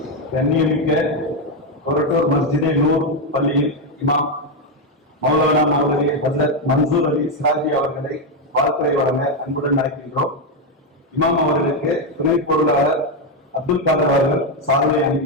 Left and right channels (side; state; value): both; normal; correlation 0.06